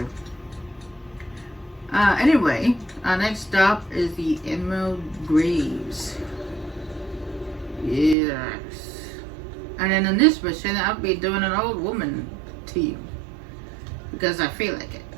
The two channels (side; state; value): left; drops out; at 8.2 s